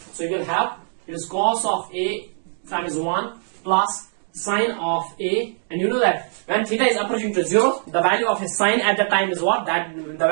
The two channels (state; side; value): silent; left; digital silence